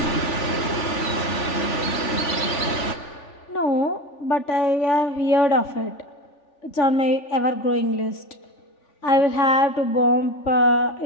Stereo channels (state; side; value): late; right; 3.4 ms